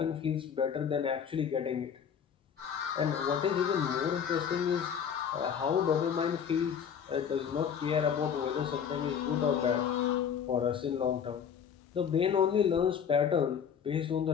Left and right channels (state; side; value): quieter; right; 7.7 dB